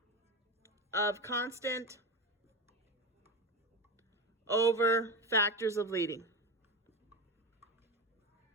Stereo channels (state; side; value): normal; both; correlation 0.21